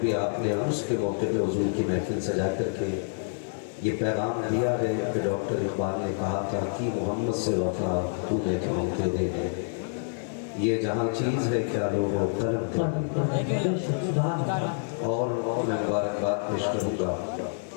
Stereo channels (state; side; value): silent; right; digital silence